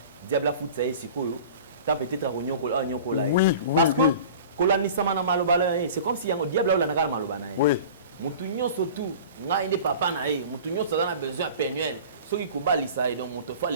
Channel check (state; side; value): inverted; both; correlation -0.40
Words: diable a foutre ça ici koyo tant peut-être à nyoko là. Oui. Parce que kolani sama na malobala c'est comme si yango diable là na malobana. Oui. Mutu nyonso tout nga inde papa na ye mutu nyonso a besoin penuel ce qui kobalisa et donc moto fa